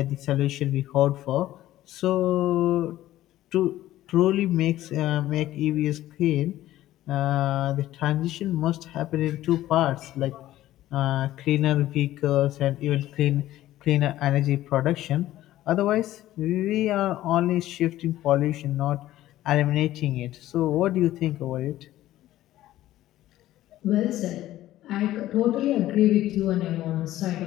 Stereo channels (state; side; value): quieter; right; 14.5 dB